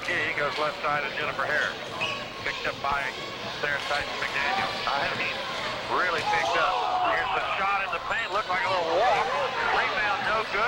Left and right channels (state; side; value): identical; both; correlation 1.00